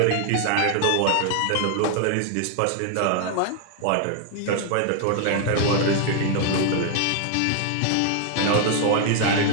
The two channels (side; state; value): both; different; correlation 0.00